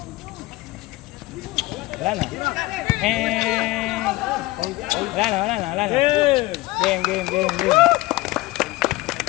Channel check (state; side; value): quieter; right; 19.9 dB